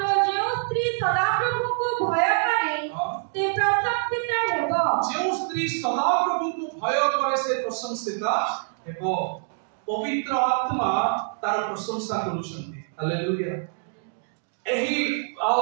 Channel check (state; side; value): silent; left; digital silence